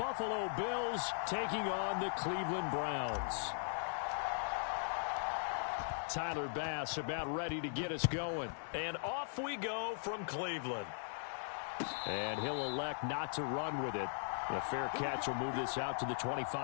Buffalo Bills taking on the Cleveland Browns. Tyler Bass about ready to get us going. And off we go from Cleveland. And he'll elect not to run with it. A fair catch will move this out to the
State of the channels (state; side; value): silent; right; digital silence